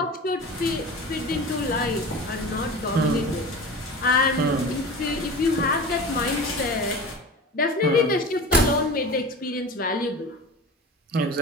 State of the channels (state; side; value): normal; both; correlation 0.34